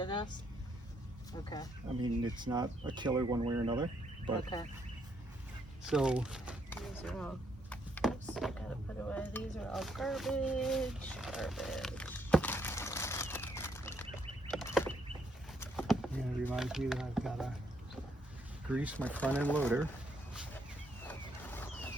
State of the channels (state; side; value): normal; both; correlation 0.73